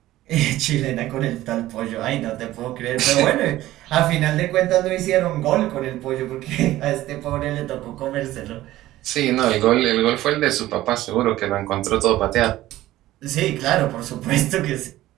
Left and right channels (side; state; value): left; quieter; 15.5 dB